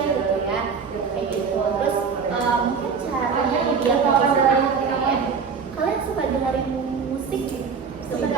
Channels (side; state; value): left; quieter; 5.8 dB